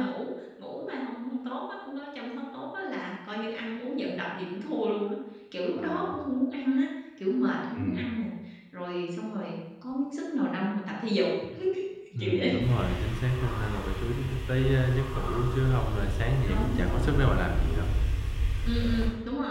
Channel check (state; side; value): identical; both; correlation 1.00